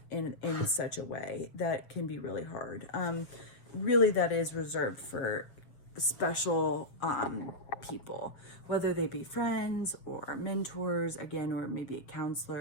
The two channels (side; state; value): right; late; 7.4 ms